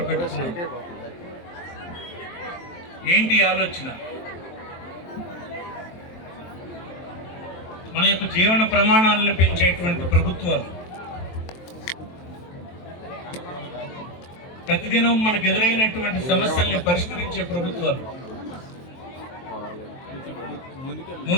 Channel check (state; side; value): late; right; 23 ms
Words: పెట్టుకున్నాం. ఏంటి ఆలోచన? మన యొక్క జీవన ప్రమాణాలను పెంచేటువంటి ప్రభుత్వాలు, ప్రతిదినం మనకు ఎదురైనటువంటి సమస్యల్ని పరిష్కరించే ప్రభుత్వాలు,